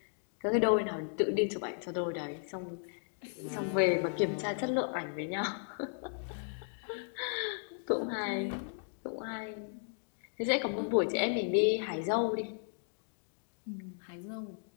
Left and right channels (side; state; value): right; silent; digital silence